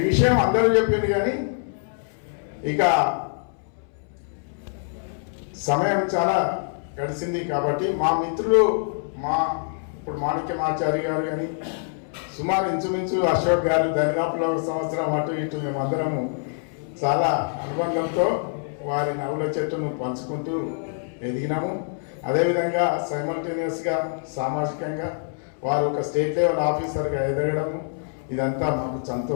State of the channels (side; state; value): right; silent; 62 dB below the other